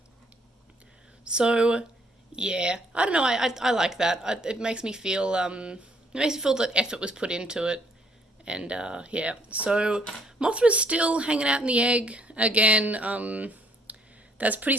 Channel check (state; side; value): normal; both; correlation 0.65